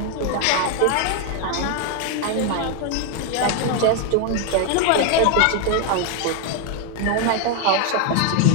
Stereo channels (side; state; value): both; different; correlation 0.01